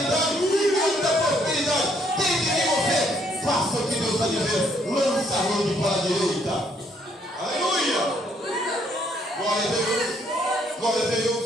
muita prosperidade. Tem que vir você. Faça o que Deus está dizendo. Lança a rede para a direita. Aleluia. Glória a Deus. Glória a Deus.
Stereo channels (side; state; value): both; normal; correlation 0.68